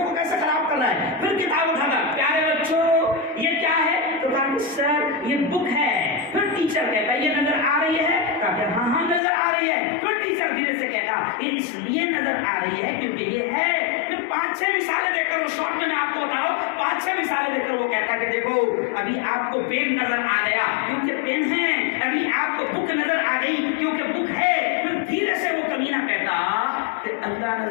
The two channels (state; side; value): drops out; right; at 9.2 s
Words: کیسے خراب کر رہا ہے، پھر کتاب اٹھاتا، پیارے بچوں یہ کیا ہے؟ تو کہا کہ سر یہ بک ہے۔ پھر ٹیچر کہتا ہے یہ نظر آ رہی ہے، کہا کہ ہاں ہاں نظر آ رہی ہے۔ پھر ٹیچر دھیرے سے کہتا یہ اس لیے نظر آ رہی ہے کیونکہ یہ ہے۔ پھر 5 5-6 مثالیں دے کر وہ شارٹ میں آپ کو بتا رہا ہوں 5-6 مثالیں دے کر وہ کہتا ہے کہ دیکھو ابھی آپ کو پین نظر آ گیا کیونکہ پین ہے, ابھی آپ کو بک نظر آ گئی کیونکہ بک ہے. پھر دھیرے سے وہ کمینہ کہتا کہ اللہ